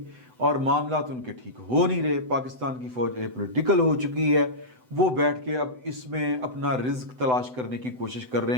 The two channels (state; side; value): late; left; 7.9 ms